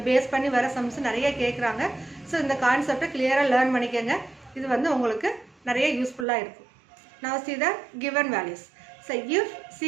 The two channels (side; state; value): left; drops out; at 6.2 s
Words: பேஸ் பண்ணி வர சம்ஸ் நிறைய கேட்குறாங்க. ஸோ இந்த கான்செப்டை கிளியராக லேர்ன் பண்ணிக்கோங்க. இது வந்து உங்களுக்கு நிறைய யூஸ்ஃபுல்லாக இருக்கும். Now see the given values. So if